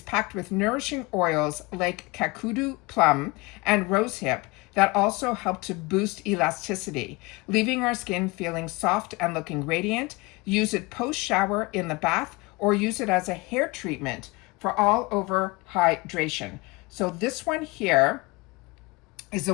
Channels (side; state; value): right; quieter; 24.6 dB